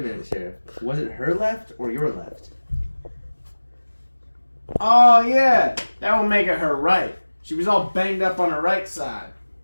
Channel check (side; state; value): both; inverted; correlation -1.00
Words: minute, Sheriff. Was it her left or your left? Oh, yeah. That would make it her right. She was all banged up on her right side.